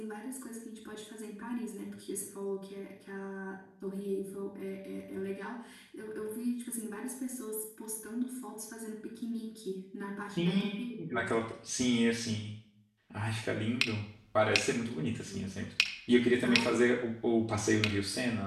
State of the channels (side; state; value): both; identical; correlation 1.00